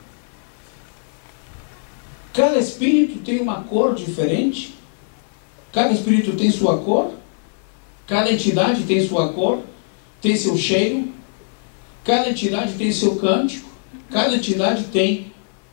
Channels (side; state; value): right; silent; 59 dB below the other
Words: cada espírito tem uma cor diferente, cada espírito tem sua cor, cada entidade tem sua cor, tem seu cheiro, cada entidade tem seu cântico, cada entidade tem